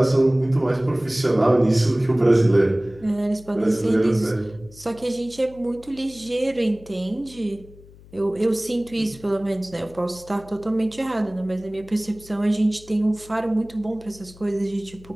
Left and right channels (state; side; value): noise; left; hum, 22 dB below the sound